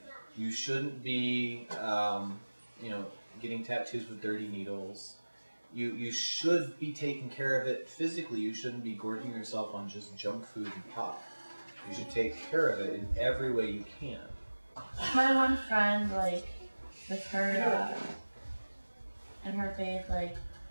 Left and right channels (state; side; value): inverted; both; correlation -1.00